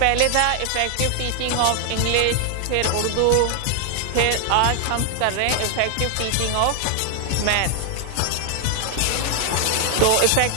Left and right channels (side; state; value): both; different; correlation 0.00